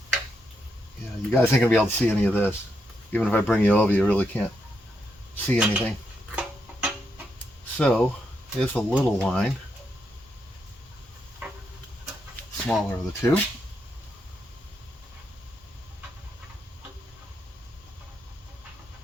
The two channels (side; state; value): both; normal; correlation 0.81